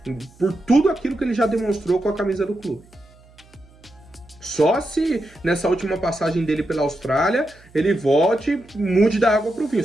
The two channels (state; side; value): noise; right; hum, 27 dB below the sound